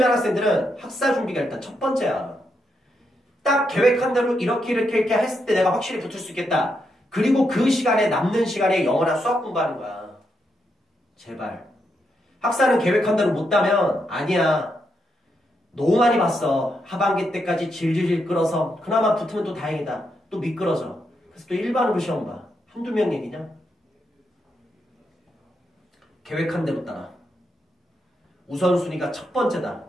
학생들은 학사 준비가 일단 첫 번째야. 딱 계획한 대로 이렇게 했을 때 내가 확실히 붙을 수 있겠다. 그리고 그 시간에 남는 시간에 영어나 수학 공부하는 거야. 제발. 학사는 계획한 대로 못 따면 아니야. 너무 많이 봤어. 하반기 때까지 질질질 끌어서 그나마 붙으면 또 다행이다. 또 미끄러져. 그래서 또 일반으로 시험 봐. 한두 명 얘기냐? 계획한 대로 따라. 우선순위가 첫 번째다.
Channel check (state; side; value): normal; both; correlation 0.81